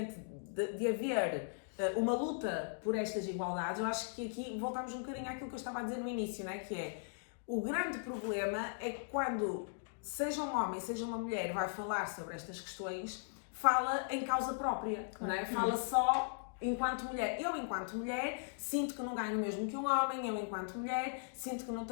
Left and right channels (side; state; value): right; silent; digital silence